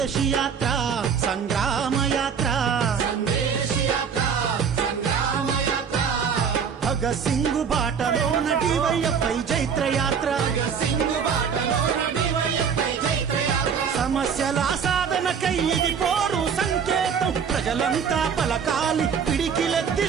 సందేశి యాత్ర సంగ్రామ యాత్ర భగత్ సింగ్ బాటలోన డివైఎఫ్ఐ జైత్ర యాత్ర సమస్యల సాధనకై ఇది పోరు సంకేతం ప్రజలంతా పలకాలి పిడికిలెత్తి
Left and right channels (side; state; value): left; quieter; 6.8 dB